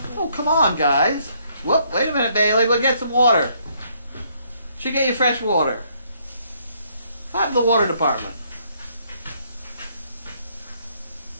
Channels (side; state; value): both; inverted; correlation -0.69